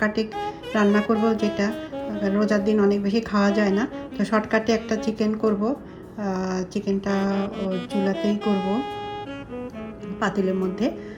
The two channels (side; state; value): both; identical; correlation 1.00